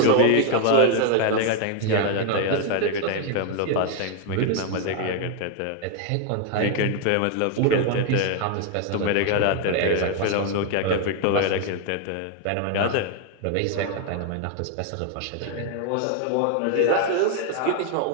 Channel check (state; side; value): different; both; correlation 0.01